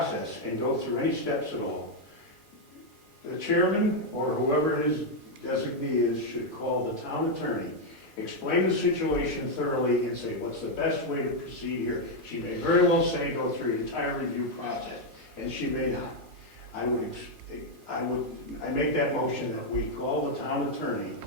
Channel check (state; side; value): normal; both; correlation 0.01